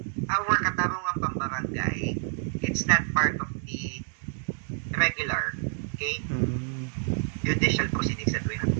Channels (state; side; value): silent; left; digital silence